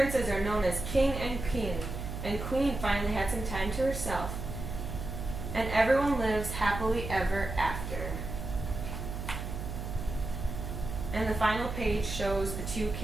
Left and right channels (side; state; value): right; noise; hum, 6 dB below the sound